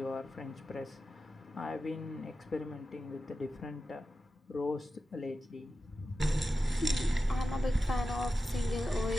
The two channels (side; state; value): both; normal; correlation 0.92